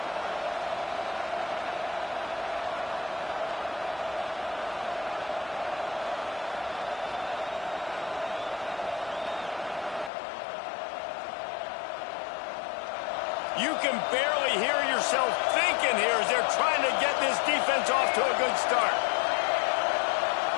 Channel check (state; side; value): drops out; right; at 10.1 s